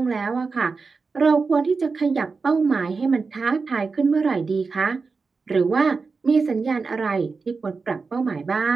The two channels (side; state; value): left; quieter; 4.5 dB